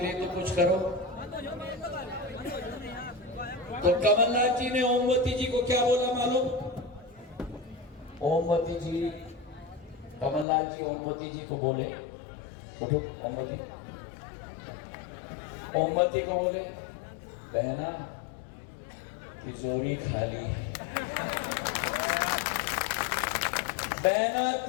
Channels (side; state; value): right; drops out; at 10.5 s